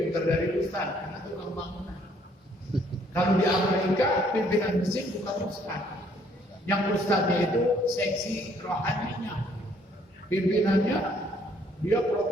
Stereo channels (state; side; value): normal; both; correlation 0.64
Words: pintar dari ustaz karena tukang bangunan. Kalau di Amerika pimpinan masjid bukan ustaz. Yang ustaznya itu seksi rohaninya. Pimpinannya dia